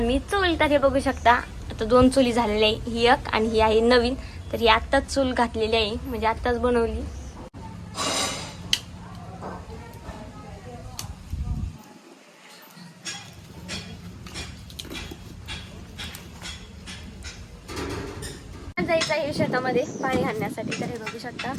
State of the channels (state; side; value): identical; both; correlation 1.00